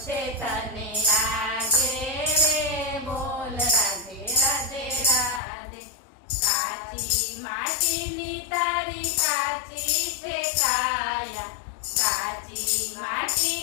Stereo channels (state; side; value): drops out; right; at 5.4 s